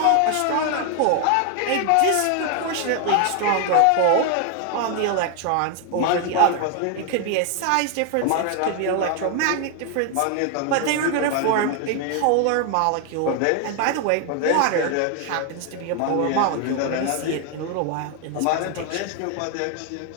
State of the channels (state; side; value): different; both; correlation 0.00